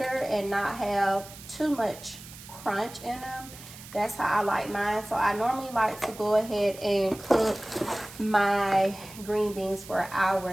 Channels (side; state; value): right; noise; hiss, 16 dB below the sound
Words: and not have too much crunch in them. That's how I like mine. So I normally like to go ahead and cook my green beans for 1 hour